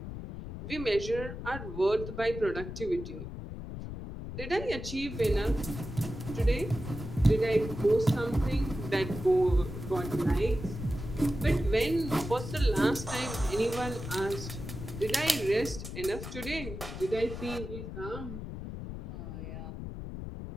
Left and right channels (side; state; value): left; noise; rumble, 8 dB below the sound